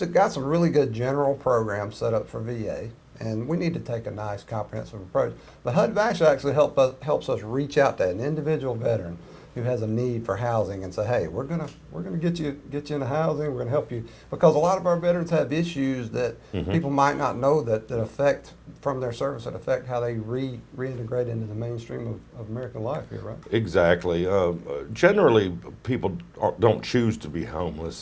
got some really good general programs set up for VA, and we need to take a nice comprehensive approach. But HUD-VASH actually helps us reach out to an individual veteran who has a need for housing and say, hey, we're gonna get you into housing, we're gonna help you, because a lot of our veterans have issues that people might not know that affect, from their service, that affect how they reintegrate into the mainstream of American life here, right? Exactly. Generally, people don't choose to be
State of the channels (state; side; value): identical; both; correlation 1.00